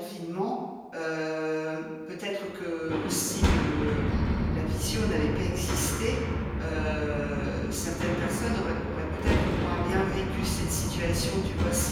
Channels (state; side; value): identical; both; correlation 1.00